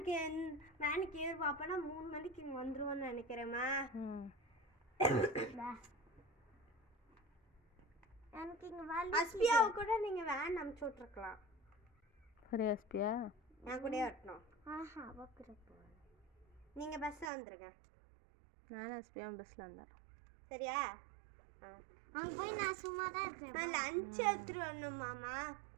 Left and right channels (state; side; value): drops out; left; at 17.3 s